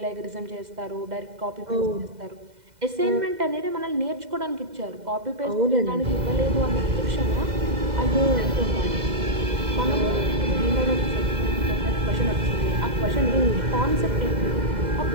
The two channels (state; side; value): late; left; 2.0 ms